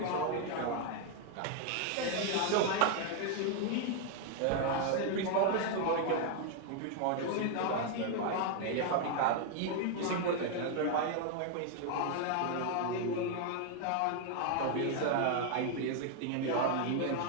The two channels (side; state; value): both; different; correlation 0.01